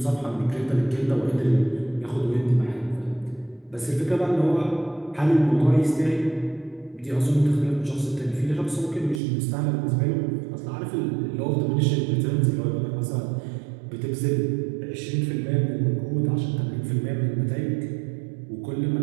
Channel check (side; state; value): left; drops out; at 9.2 s